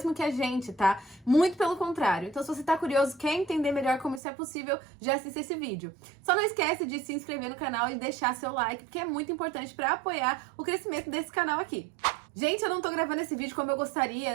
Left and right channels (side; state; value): left; drops out; at 4.2 s